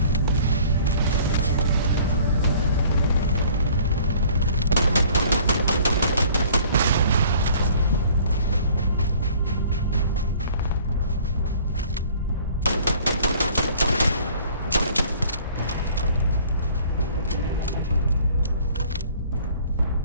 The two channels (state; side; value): inverted; both; correlation -0.52